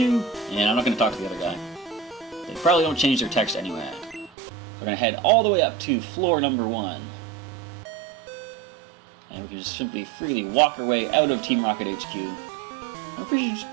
And I'm not going to talk to the other guy. They probably don't change their text anyway. We're going to head all the way up to floor number 1. And we can just simply freely walk our way out of Team Rocket HQ. I'm pretty sure just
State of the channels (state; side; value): drops out; left; at 4.3 s